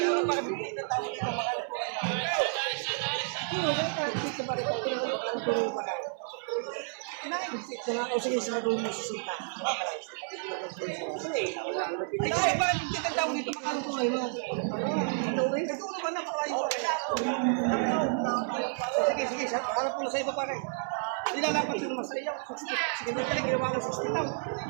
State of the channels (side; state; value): left; silent; 57 dB below the other